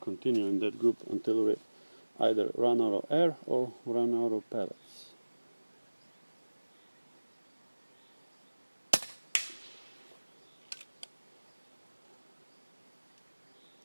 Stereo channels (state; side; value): inverted; both; correlation -1.00